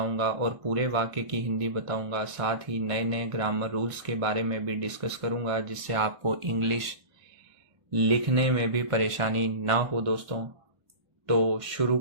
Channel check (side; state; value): left; late; 1.4 ms